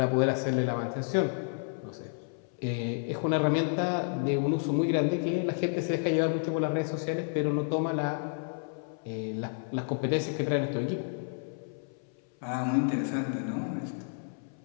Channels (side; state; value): right; silent; 57 dB below the other